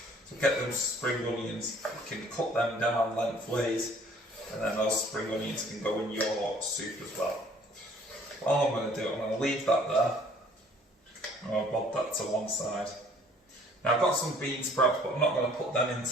So get them spring onions, you can cut them down lengthways, and then those spring onions can go in your soup as well. All I'm going to do, I'm going to leave that there. I'm going to bob that to one side. Now I've got some bean sprouts, but I'm not going to put them in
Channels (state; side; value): normal; both; correlation 0.57